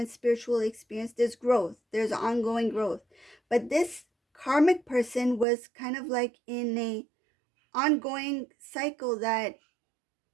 spiritual experience. There's growth, there's ongoing growth. But this karmic person was kind of like in a ongoing cycle that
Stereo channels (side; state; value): left; drops out; at 5.5 s